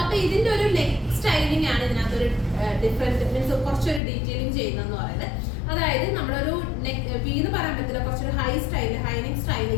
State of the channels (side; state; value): right; drops out; at 4.0 s